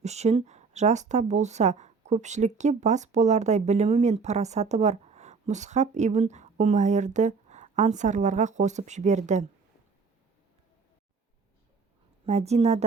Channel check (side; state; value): left; quieter; 4.9 dB